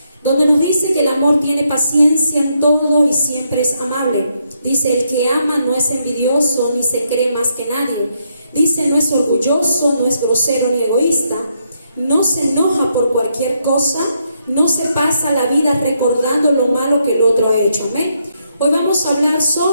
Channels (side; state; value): both; inverted; correlation -0.77